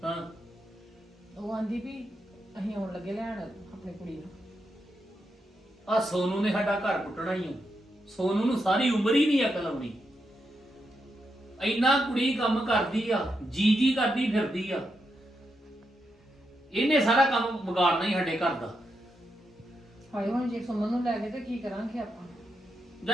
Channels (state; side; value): normal; both; correlation 0.83